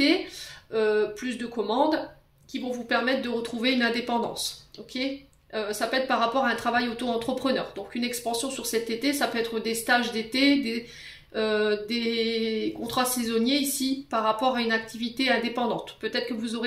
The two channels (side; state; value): both; identical; correlation 1.00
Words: plus de commandes qui vont vous permettre de retrouver une indépendance, ok. Ça peut être par rapport à un travail auto-entrepreneur. Donc une expansion sur cet été, ça peut être des stages d'été, des contrats saisonniers ici par rapport à une activité indépendante. Peut-être que vous